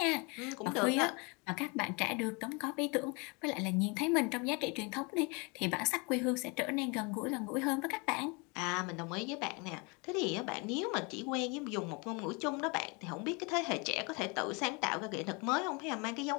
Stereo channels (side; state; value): right; quieter; 30.1 dB